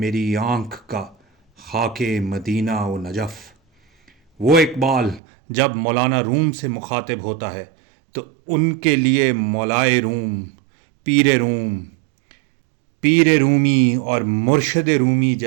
آنکھ کا خاک مدینہ و نجف۔ وہ اقبال جب مولانا روم سے مخاطب ہوتا ہے تو ان کے لیے مولائے روم، پیر رومی اور مرشد رومی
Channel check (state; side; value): drops out; left; at 5.2 s